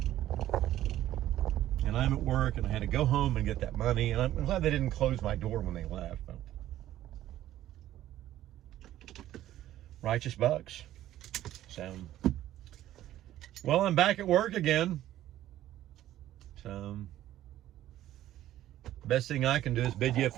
And I'm at work and I had to go home and get that money. And I'm glad they didn't close my door when they left. Righteous bucks. So, well, I'm back at work again. So, best thing I can do is bid you a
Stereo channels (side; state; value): left; quieter; 13.3 dB